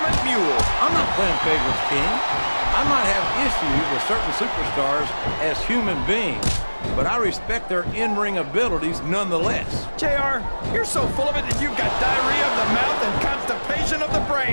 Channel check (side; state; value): both; inverted; correlation -1.00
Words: mule. I'm not playing favorites, King. I might have issues with certain superstars as human beings, but I respect their in-ring abilities nonetheless. JR, you're so full of it that you've got diarrhea of the mouth and constipation of the